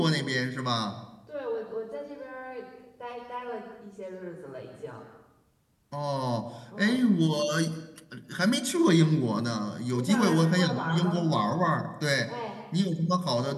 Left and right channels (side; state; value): both; identical; correlation 1.00